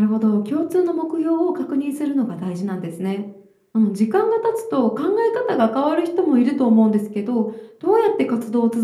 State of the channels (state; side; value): identical; both; correlation 1.00